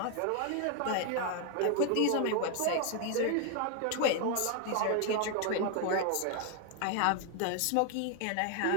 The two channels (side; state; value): both; different; correlation 0.00